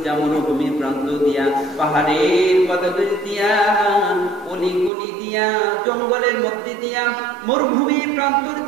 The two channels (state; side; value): drops out; left; at 4.9 s